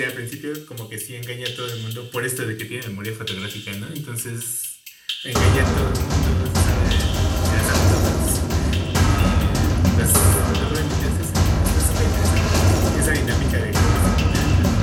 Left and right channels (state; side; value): identical; both; correlation 1.00